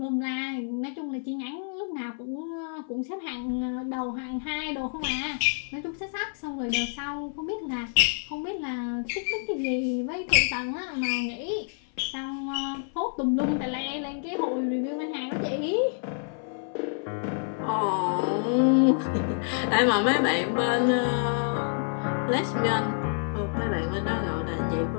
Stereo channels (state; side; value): silent; right; 59 dB below the other